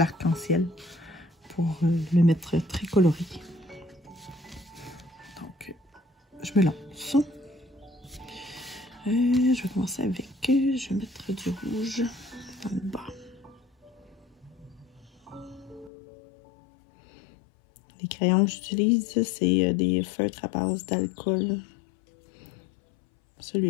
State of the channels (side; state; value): right; drops out; at 15.9 s